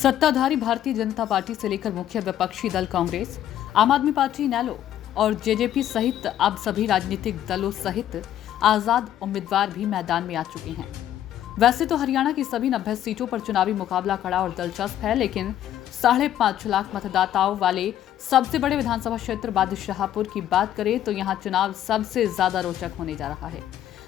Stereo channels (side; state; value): right; quieter; 11.6 dB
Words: भारतीय जनता पार्टी से लेकर मुख्य विपक्षी दल कांग्रेस, आम आदमी पार्टी, इनेलो और जेजेपी सहित अब सभी राजनीतिक दलों सहित आजाद उम्मीदवार भी मैदान में आ चुके हैं। वैसे तो हरियाणा की सभी 90 सीटों पर चुनावी मुकाबला कड़ा और दिलचस्प है, लेकिन 5.5 लाख मतदाताओं वाले सबसे बड़े विधानसभा क्षेत्र बादशाहपुर की बात करें तो यहाँ चुनाव सबसे ज्यादा रोचक होने जा रहा है।